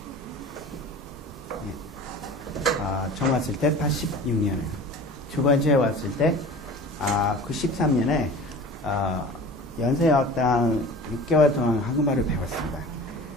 처음 왔을 때 86년에 두 번째 왔을 때 93년에 연세여학당 6개월 동안 한국말을 배웠습니다.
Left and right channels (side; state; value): both; normal; correlation 0.40